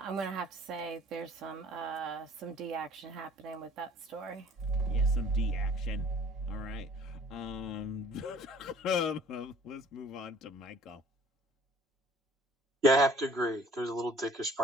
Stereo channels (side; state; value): both; normal; correlation 0.53